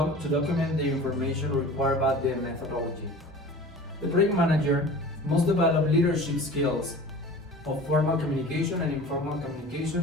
document the information required by the methodology. The project manager must develop leadership skills of formal communication and informal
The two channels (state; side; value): normal; both; correlation 0.40